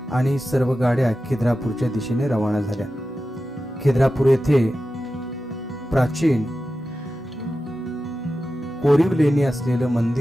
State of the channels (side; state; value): both; normal; correlation 0.92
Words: आणि सर्व गाड्या खिद्रापूरच्या दिशेने रवाना झाल्या. खिद्रापूर येथे प्राचीन कोरीव लेणी असलेलं